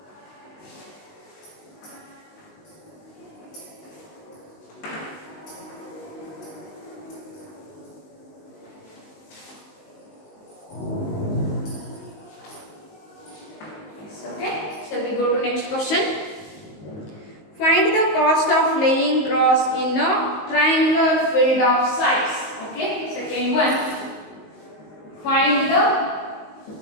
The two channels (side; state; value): right; late; 19 ms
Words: Go to next question. Find the cost of laying grass in a triangular field of size. Okay, second one. Find the